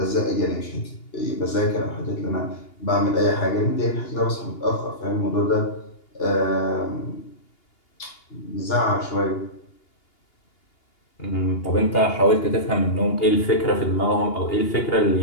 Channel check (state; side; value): late; right; 2.8 ms